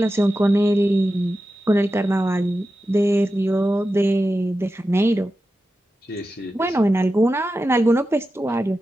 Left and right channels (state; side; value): normal; both; correlation 0.92